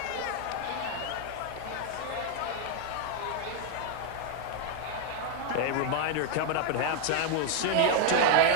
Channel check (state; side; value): different; both; correlation 0.00